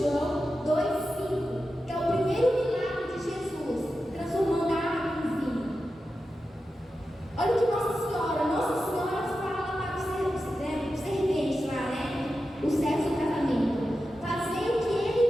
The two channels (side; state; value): both; normal; correlation 0.91